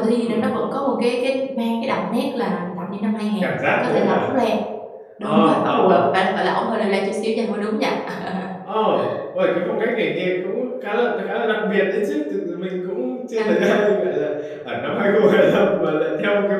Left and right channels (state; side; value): identical; both; correlation 1.00